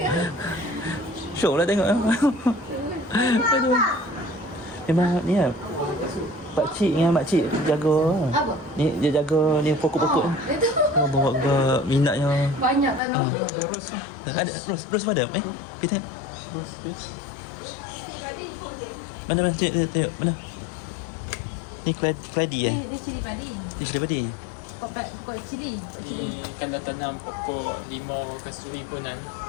Syok lah tengok. Aduh. Memang ni lah. Pakcik dengan makcik jaga. Apa? Ni dia jaga ni pokok-pokok ni. Itu Oh, bawa ke minatnya. banyak tanam. Ada ros padam kita mana tengok mana ni keladi Dia cili padi. ni cili padi Pokok cili. Kalau tanam pokok limau kasturi pun kan,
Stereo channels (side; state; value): right; drops out; at 13.0 s